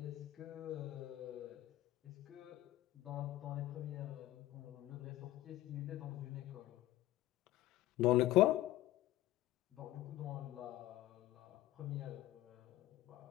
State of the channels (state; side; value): quieter; right; 15.4 dB